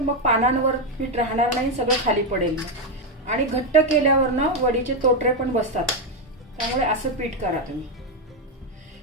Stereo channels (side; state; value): both; normal; correlation 0.05